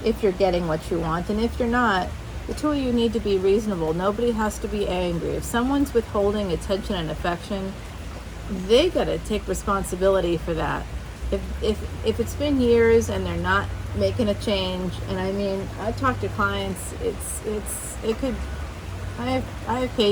if you're getting what you want, and if you're not, the two of you need to be reasonable. Nobody has to be angry. If someone's withholding attention and affection, they gotta take responsibility for that. If it's been years and they're not making a change, and I mean, I talk to clients, it could, I have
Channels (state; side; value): identical; both; correlation 1.00